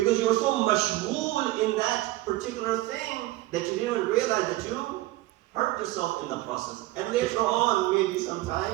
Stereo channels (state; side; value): quieter; left; 17.6 dB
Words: you were so mashghool in that particular thing that you didn't even realize that you hurt yourself in the process. And later on, maybe